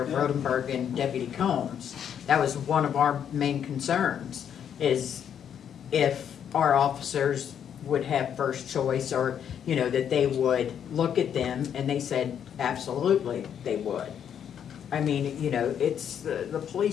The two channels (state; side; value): quieter; right; 8.7 dB